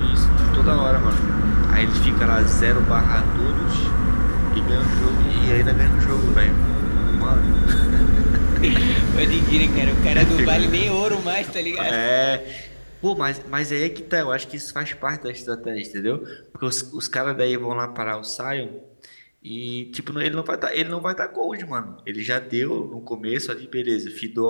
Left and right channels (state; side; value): inverted; both; correlation -1.00